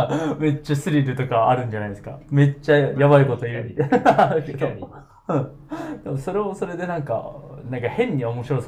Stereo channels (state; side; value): identical; both; correlation 1.00